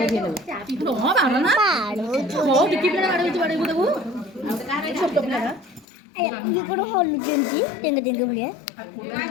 ये कौन हॉल जेंटी टेंगे टेंगे भलिया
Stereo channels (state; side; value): drops out; right; at 5.9 s